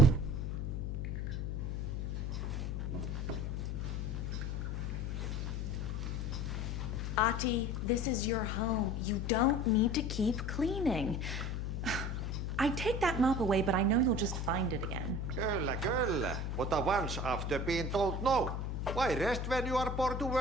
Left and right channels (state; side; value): noise; left; hum, 2 dB below the sound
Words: Ati, this is your home. You don't need to keep cleaning. I take that mop away, but I know you'll just find it again. Kyllä. But once after being told no. Why rest when you are born to